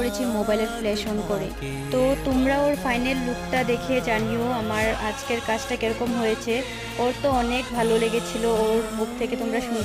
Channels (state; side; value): identical; both; correlation 1.00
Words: মোবাইলের ফ্ল্যাশ অন করে। তো তোমরা ওর ফাইনাল লুকটা দেখে জানিও আমার আজকের কাজটা কিরকম হয়েছে। ওর তো অনেক ভালো লেগেছিল, ওর মুখ থেকে তোমরা